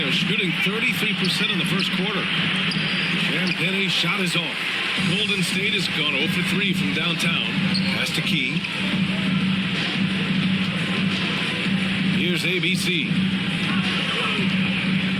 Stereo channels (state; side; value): identical; both; correlation 1.00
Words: shooting 33% in the first quarter. Champagne's shot is off. Golden State has gone 0 for 3 from downtown. Pass to Key. Here's ABC.